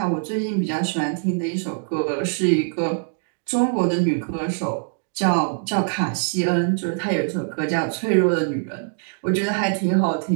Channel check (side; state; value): left; silent; digital silence